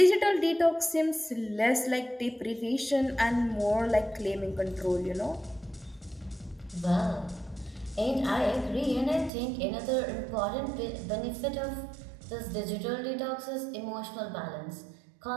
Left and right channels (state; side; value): drops out; left; at 9.3 s